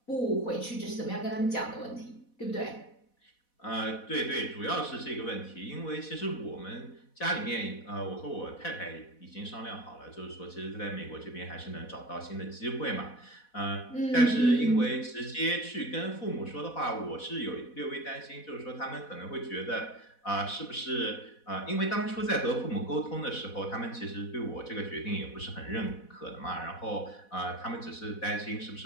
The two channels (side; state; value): right; late; 4.1 ms